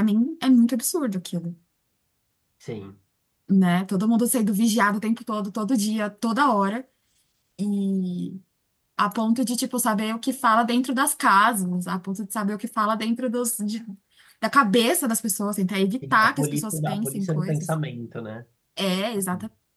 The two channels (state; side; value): identical; both; correlation 1.00